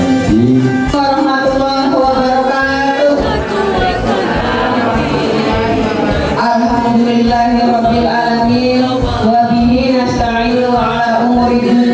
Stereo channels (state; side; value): identical; both; correlation 1.00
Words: warahmatullahi wabarakatuh. Alhamdulillahirabbil alamin wa bihi nasta'inu ala umuri